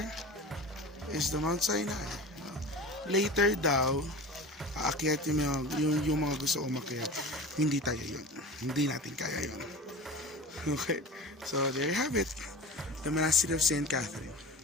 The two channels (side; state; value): both; normal; correlation 0.33